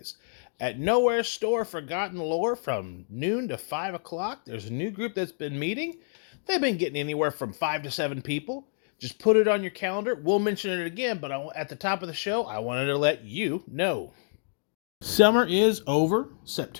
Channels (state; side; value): silent; right; digital silence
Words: At Nowhere Store Forgotten Lore from noon to 5 o'clock, there's a new group that's been meeting. They've been getting anywhere from 5 to 7 people. Just put it on your calendar. We'll mention it again, but at the top of the show, I wanted to let you know. Summer is over.